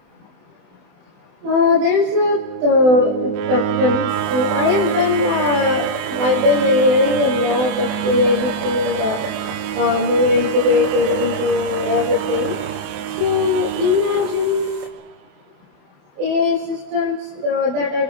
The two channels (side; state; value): left; late; 31 ms